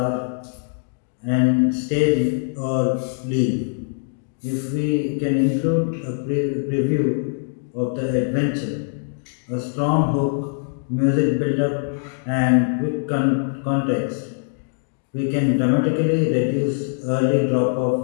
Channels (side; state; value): right; silent; digital silence